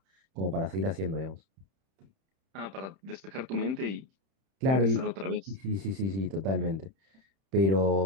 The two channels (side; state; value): left; late; 31 ms